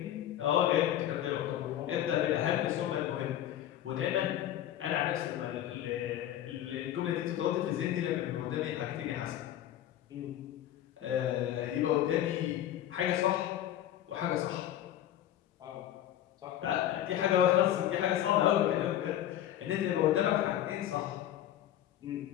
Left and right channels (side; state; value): right; quieter; 11.9 dB